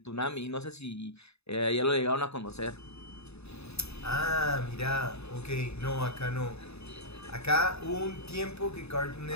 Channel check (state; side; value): late; right; 0.79 ms